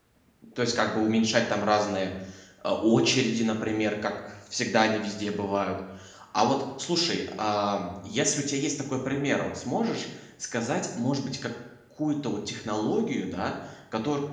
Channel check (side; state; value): both; identical; correlation 1.00